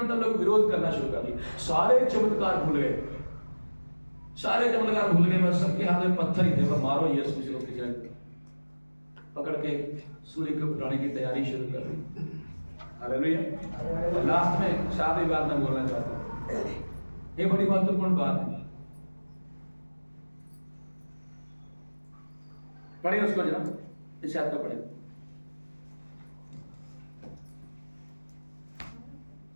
तब लोग विरोध करना शुरू कर दिया। सारे चमत्कार भूल गए, बस सबके हाथ में पत्थर ही थे। वो मारो यीशु को पकड़ के सूली को उठाने की तैयारी शुरू कर दी। हालेलुया। लास्ट में सारी बात मैं बोलना चाहता हूं, ये बड़ी महत्वपूर्ण बात है। पढ़िए उसको जरा, इस याद का पढ़े।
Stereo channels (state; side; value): inverted; both; correlation -1.00